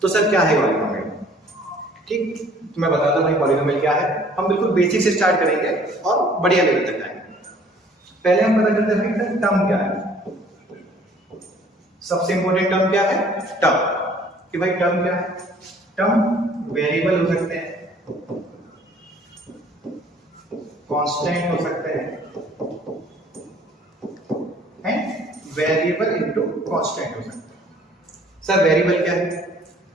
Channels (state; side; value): normal; both; correlation 0.56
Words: तो सर क्या है पॉलिनोमियल? ठीक, तो मैं बताता हूँ भाई पॉलिनोमियल क्या है। हम बिल्कुल बेसिक से स्टार्ट करेंगे और बढ़िया लेवल तक जाएंगे। पहले हम पता करते हैं भाई टर्म क्या है। सबसे इंपॉर्टेंट टर्म क्या है? टर्म। कि भाई टर्म क्या है? टर्म वेरिएबल हो सकते हैं, कांस्टेंट हो सकते हैं, वेरिएबल इनटू कांस्टेंट हो सकता है। सर वेरिएबल क्या है?